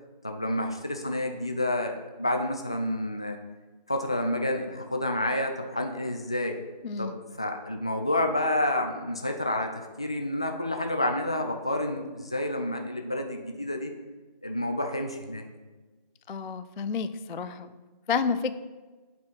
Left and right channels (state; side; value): inverted; both; correlation -0.61